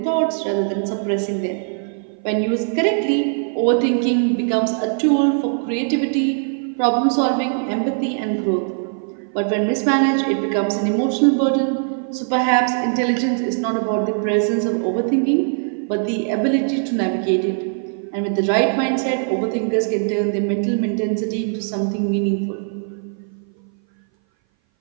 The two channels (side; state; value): left; silent; 59 dB below the other